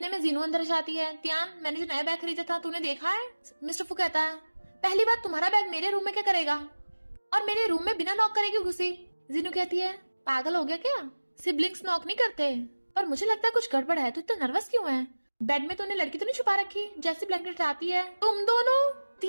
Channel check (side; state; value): both; inverted; correlation -1.00